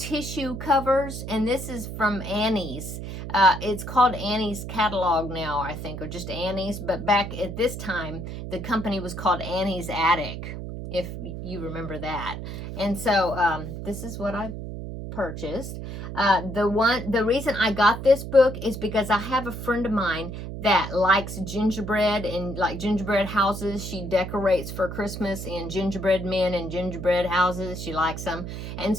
covers, and this is from Annie's. It's called Annie's catalog now, I think, or just Annie's, but back at this time, the company was called Annie's Attic, if you remember that. And so this is what I purchased. The reason I got this book is because I have a friend of mine that likes gingerbread and like gingerbread houses. She decorates for Christmas in gingerbread men and gingerbread houses. She likes them. And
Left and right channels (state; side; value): noise; right; hum, 7 dB below the sound